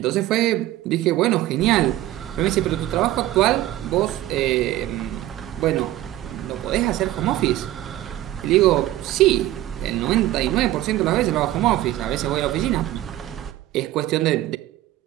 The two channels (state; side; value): quieter; left; 14.8 dB